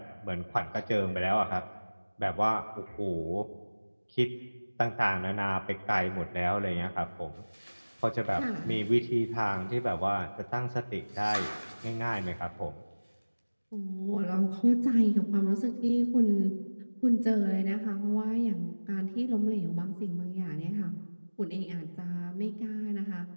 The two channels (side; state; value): both; inverted; correlation -1.00